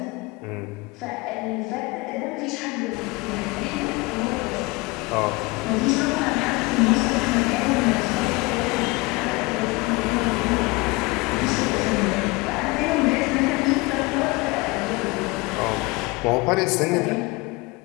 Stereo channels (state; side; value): quieter; right; 24.5 dB